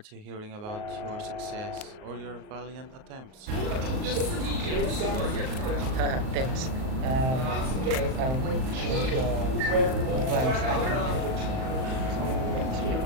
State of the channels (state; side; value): late; left; 38 ms